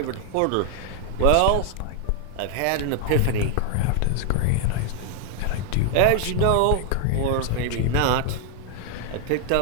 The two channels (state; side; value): different; both; correlation 0.00